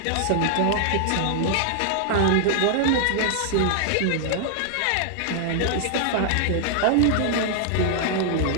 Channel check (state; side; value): different; both; correlation -0.01